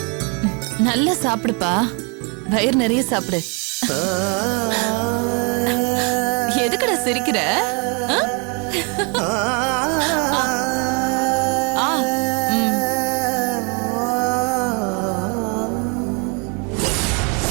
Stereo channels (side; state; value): left; quieter; 34.2 dB